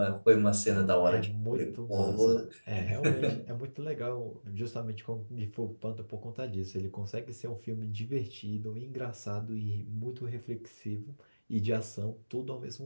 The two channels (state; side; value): inverted; both; correlation -1.00